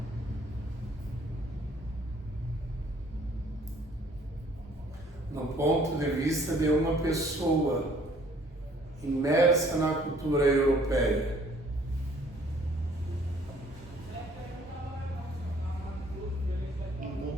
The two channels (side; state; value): both; normal; correlation 0.59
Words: no ponto de vista de uma pessoa imersa na cultura europeia. Do